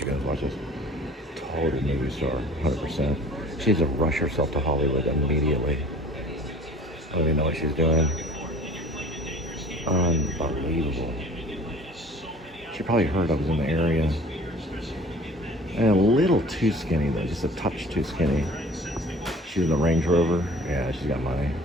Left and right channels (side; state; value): both; normal; correlation 0.47